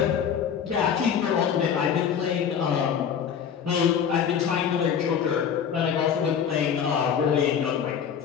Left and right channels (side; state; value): right; quieter; 7.8 dB